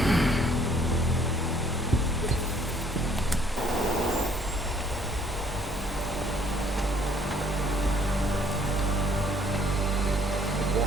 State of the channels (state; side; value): normal; both; correlation 0.61